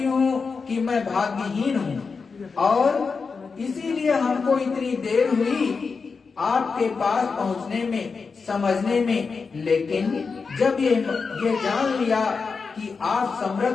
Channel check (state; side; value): quieter; right; 4.9 dB